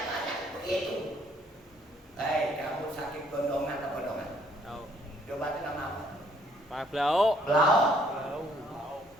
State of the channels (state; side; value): normal; both; correlation 0.65